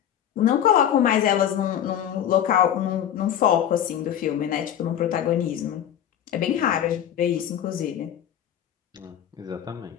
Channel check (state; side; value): quieter; right; 10.1 dB